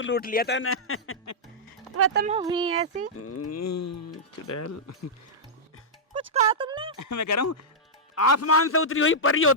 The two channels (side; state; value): both; normal; correlation -0.10